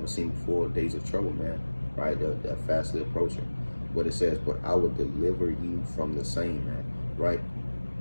seen before. Days of trouble, man. Right? They're fastly approaching. But it says, "But I will deliver you from the same," man. Right?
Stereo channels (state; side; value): inverted; both; correlation -1.00